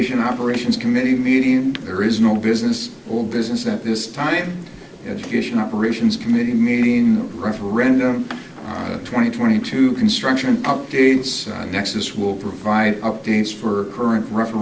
Operations Committee meeting. There is no business, old business at this time. Education Operations Committee meeting, referendum, 2022 construction updates. Nexus will provide updates for current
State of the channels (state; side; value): identical; both; correlation 1.00